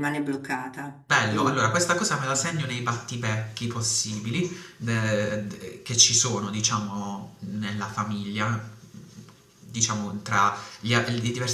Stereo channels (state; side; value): identical; both; correlation 1.00